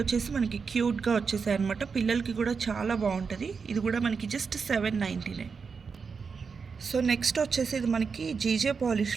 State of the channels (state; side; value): quieter; left; 5.5 dB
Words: వచ్చేసి మనకి క్యూట్గా వచ్చేసాయి అనమాట. పిల్లలకి కూడా చాలా బాగుంటుంది. ఇది కూడా మనకి జస్ట్ 799. సో నెక్స్ట్ వచ్చేసి ఇది మనకి జీజే